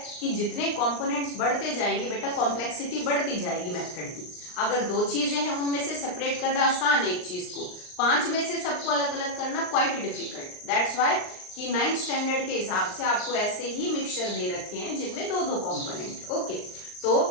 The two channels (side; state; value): right; late; 39 ms